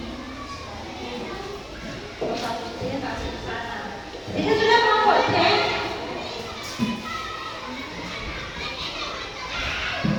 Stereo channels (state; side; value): identical; both; correlation 1.00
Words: Ini sudah kelompok C.